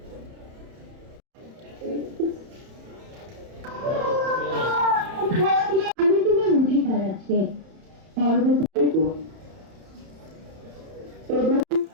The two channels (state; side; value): late; left; 31 ms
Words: আমি তোমার অধিকার আছে